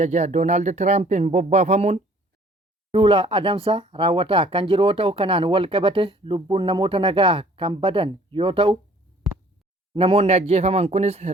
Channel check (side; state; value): both; normal; correlation 0.55